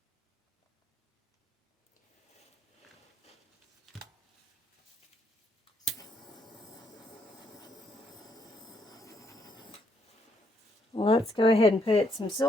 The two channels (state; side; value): normal; both; correlation 0.73